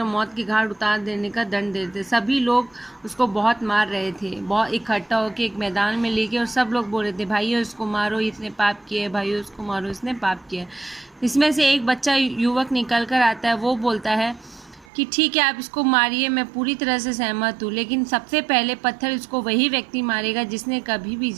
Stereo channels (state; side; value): drops out; left; at 14.9 s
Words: मौत की घाट उतार देने का दंड देते। सभी लोग उसको बहुत मार रहे थे, बहुत इकट्ठा होकर एक मैदान में लेके, और सब लोग बोल रहे थे भाइयों इसको मारो, इसने पाप किया है, भाइयों इसको मारो, इसने पाप किया है। इसमें से एक बच्चा युवक निकल कर आता है। वो बोलता है कि ठीक है आप इसको मारिए, मैं पूरी तरह से सहमत हूँ, लेकिन सबसे पहले पत्थर इसको वही व्यक्ति मारेगा जिसने कभी भी